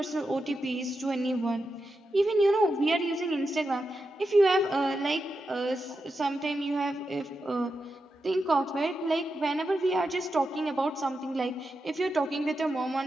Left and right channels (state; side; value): normal; both; correlation 0.88